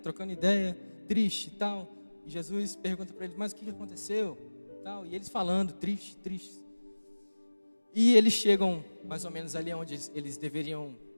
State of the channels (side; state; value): both; inverted; correlation -1.00